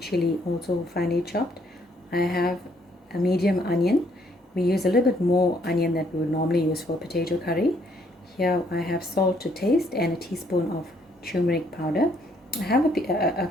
also finely chopped. I have a medium onion. We use a little bit more onion than we would normally use for potato curry. Here I have salt to taste and a teaspoon of turmeric powder. I have a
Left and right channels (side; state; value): both; normal; correlation 0.68